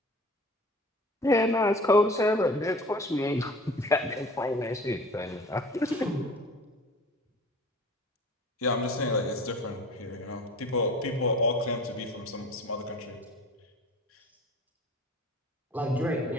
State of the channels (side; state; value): both; normal; correlation 0.43